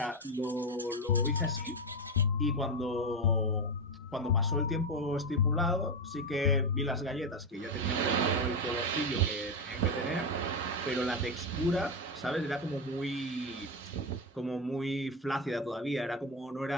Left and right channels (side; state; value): both; normal; correlation 0.12